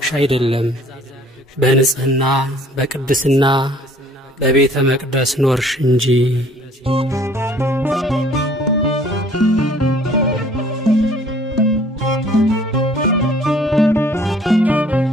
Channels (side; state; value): both; normal; correlation 0.56